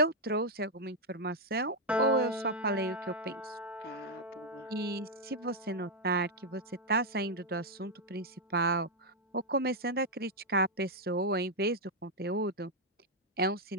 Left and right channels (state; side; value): normal; both; correlation -0.01